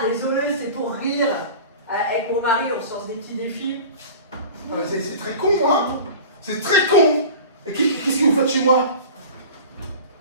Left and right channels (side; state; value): both; inverted; correlation -0.37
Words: désolé, c'est pour rire. Avec mon mari, on sort des petits défis. C'est très con, hein? C'est très con. Et qu'est-ce que vous faites chez moi?